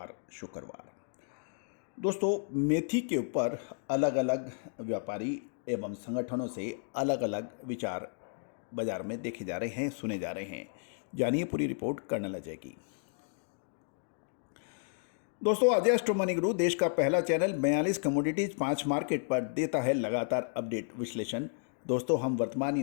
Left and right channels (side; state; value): right; silent; digital silence